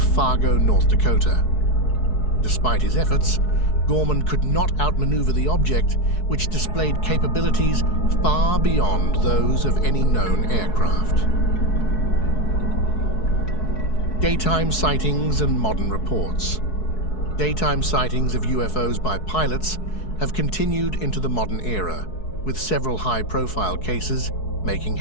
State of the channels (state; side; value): late; right; 4.7 ms